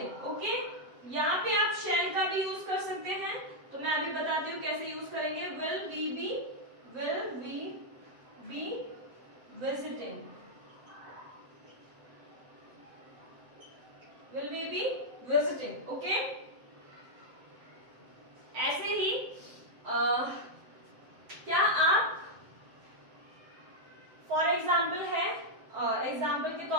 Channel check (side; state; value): left; late; 7.7 ms